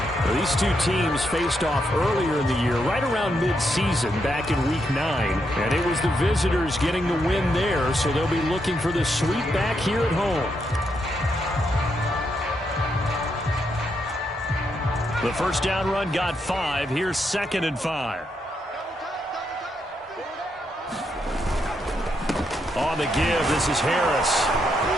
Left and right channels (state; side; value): normal; both; correlation 0.80